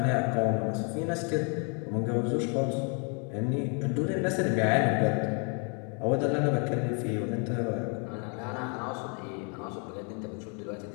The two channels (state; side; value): quieter; right; 38.2 dB